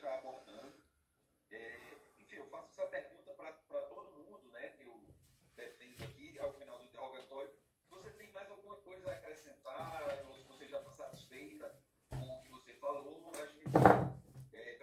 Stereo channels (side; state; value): both; identical; correlation 1.00